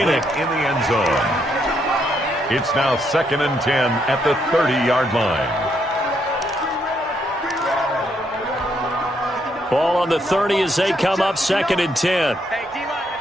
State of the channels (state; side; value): normal; both; correlation 0.75